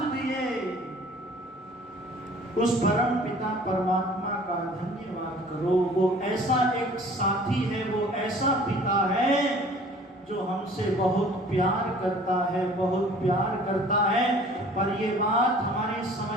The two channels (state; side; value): normal; both; correlation 0.50